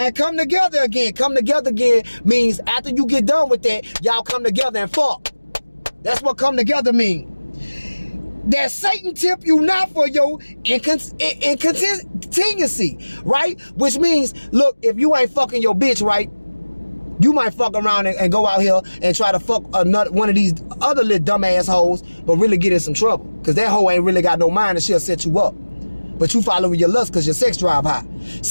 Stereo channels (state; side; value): inverted; both; correlation -1.00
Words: come together again. Come together again means after you get done with that, y'all come together and fuck. That's what come together mean. That Satan tempt you not for your incontinency, right? Which means, look, if you ain't fucking your bitch, right, you might fuck around and go out here and try to fuck one of these other little dumbass hoes, but really get in some trouble. Because that hoe ain't really got no mind and she'll set you up. But you following your lust because your sex drive high.